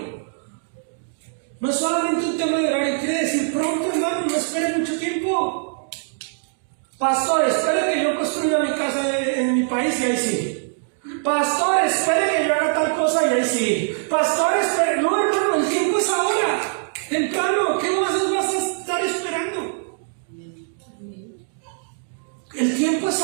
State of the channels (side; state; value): left; silent; digital silence